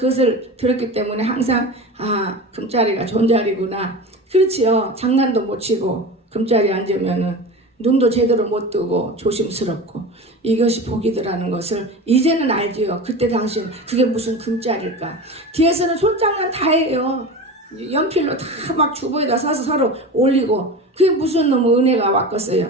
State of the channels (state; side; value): normal; both; correlation 0.30